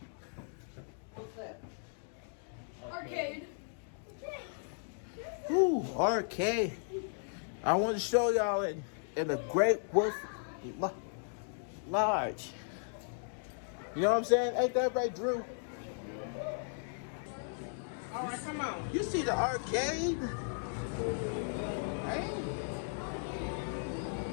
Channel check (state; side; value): silent; right; digital silence